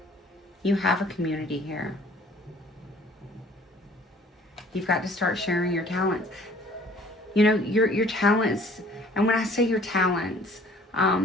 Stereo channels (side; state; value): both; normal; correlation 0.53